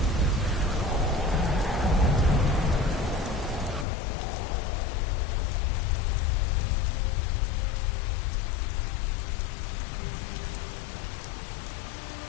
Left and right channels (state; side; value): drops out; right; at 3.9 s